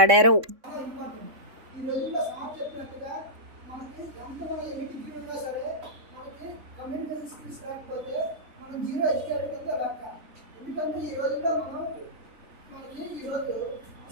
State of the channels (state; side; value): late; left; 3.6 ms